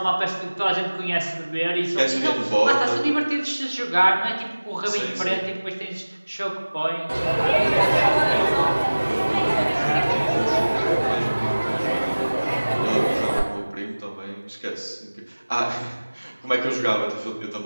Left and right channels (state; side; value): inverted; both; correlation -1.00